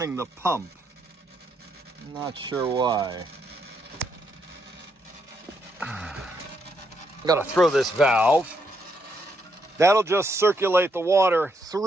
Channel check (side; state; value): both; normal; correlation 0.77